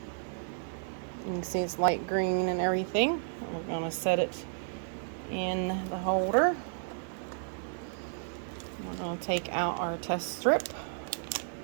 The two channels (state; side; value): silent; left; digital silence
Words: it's light green and everything. We're going to set it in the holder. We're going to take out our test strip.